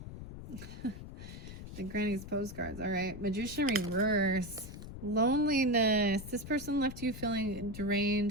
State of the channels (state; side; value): noise; left; rumble, 11 dB below the sound